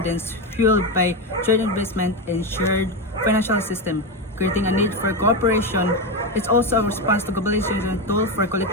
fueled by trade investment and shared financial system, creating a need for cooperation. It's also a response to globalization tool for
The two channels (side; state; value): both; normal; correlation 0.12